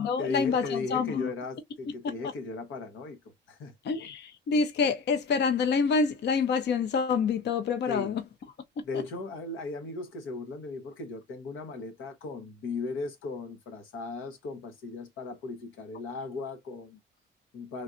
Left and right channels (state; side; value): quieter; right; 4.6 dB